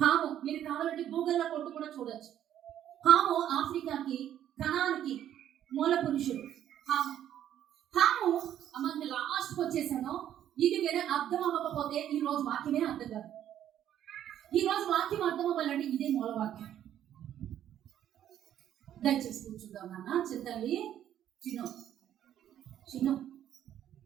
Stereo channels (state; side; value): quieter; left; 10.9 dB